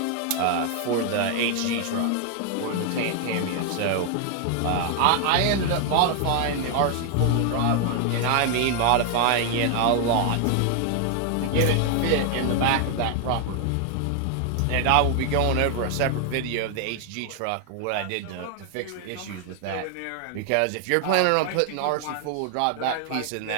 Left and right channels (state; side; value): different; both; correlation 0.00